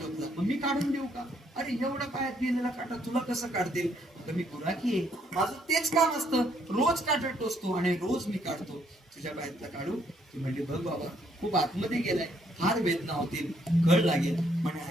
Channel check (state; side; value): normal; both; correlation 0.70